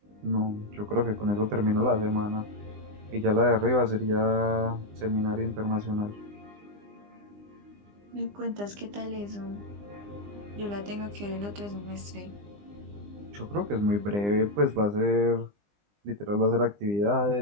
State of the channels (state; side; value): late; left; 20 ms